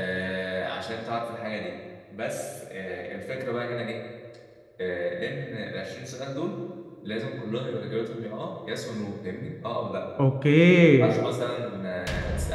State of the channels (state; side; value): identical; both; correlation 1.00